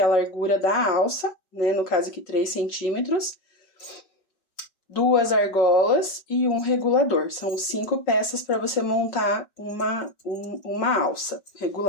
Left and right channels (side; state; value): right; late; 5.4 ms